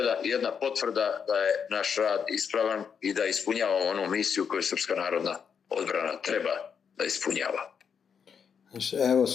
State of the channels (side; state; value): right; quieter; 7.0 dB